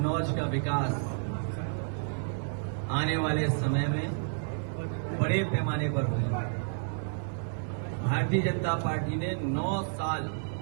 का विकास आने वाले समय में बड़े पैमाने पर होगा। भारतीय जनता पार्टी ने 9 साल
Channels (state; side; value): silent; left; 57 dB below the other